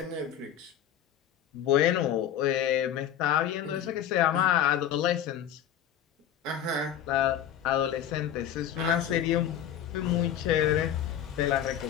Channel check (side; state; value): right; quieter; 10.0 dB